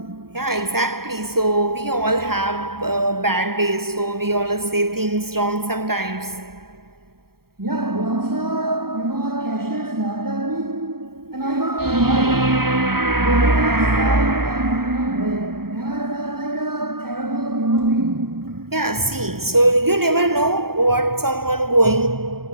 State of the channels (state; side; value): late; left; 0.94 ms